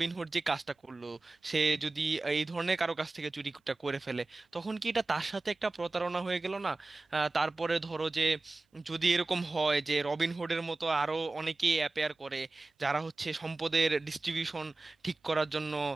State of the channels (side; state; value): left; quieter; 3.2 dB